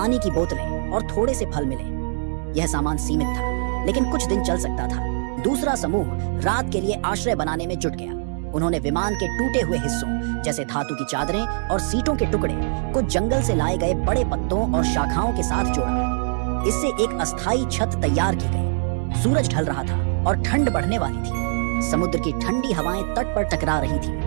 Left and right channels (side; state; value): left; silent; digital silence